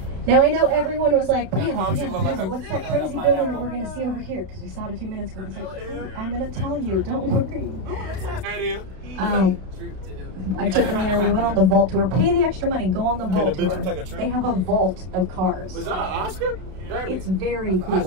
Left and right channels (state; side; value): late; left; 31 ms